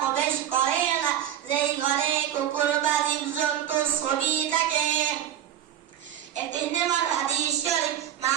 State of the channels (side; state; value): left; quieter; 10.7 dB